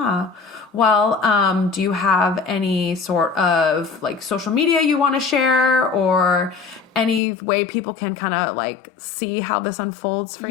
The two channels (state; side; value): drops out; right; at 7.2 s